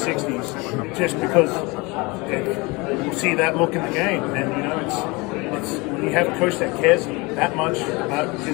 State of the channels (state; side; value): quieter; right; 25.6 dB